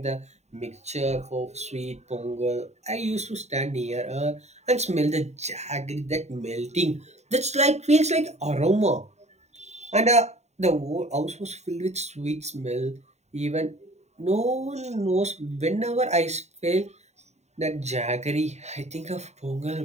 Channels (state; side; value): late; left; 0.32 ms